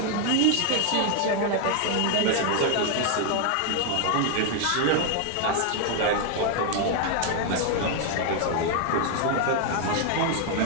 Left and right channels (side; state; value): both; different; correlation 0.00